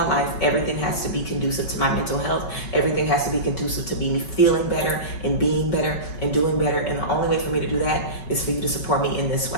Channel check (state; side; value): late; right; 5.3 ms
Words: life, everything has to be conducive to my mental health. Everything has to be conducive to me feeling better and being better and doing better. And the only way for me to do that is for you to support me in this